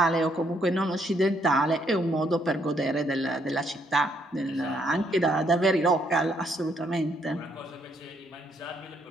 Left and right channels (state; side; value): normal; both; correlation 0.72